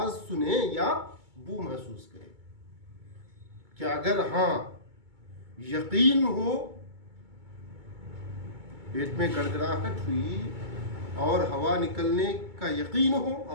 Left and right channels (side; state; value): left; late; 2.2 ms